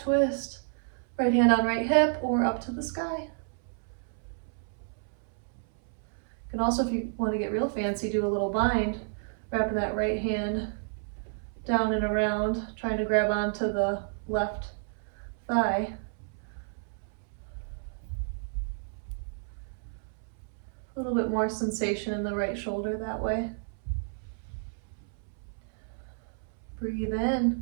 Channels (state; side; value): silent; left; 57 dB below the other